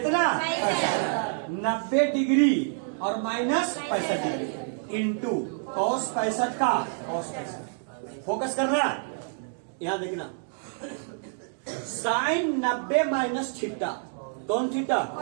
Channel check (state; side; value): silent; left; 60 dB below the other